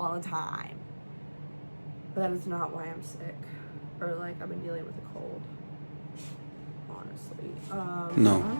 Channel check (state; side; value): inverted; both; correlation -1.00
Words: the time. But that is not why I'm sick. Or like I've been dealing with a cold. Honestly. No. I'm